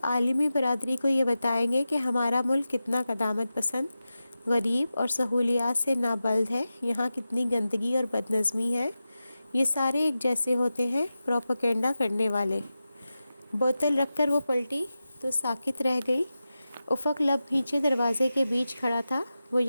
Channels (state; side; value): inverted; both; correlation -0.93